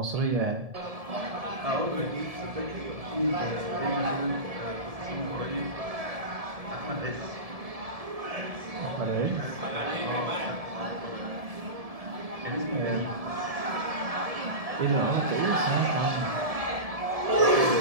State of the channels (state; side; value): late; left; 1.7 ms